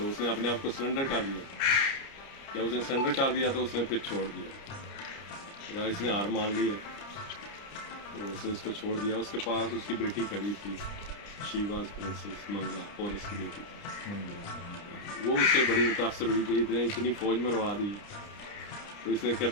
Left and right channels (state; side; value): late; right; 29 ms